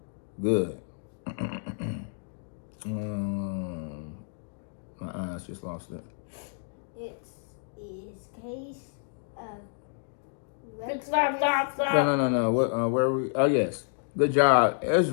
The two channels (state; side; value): silent; right; digital silence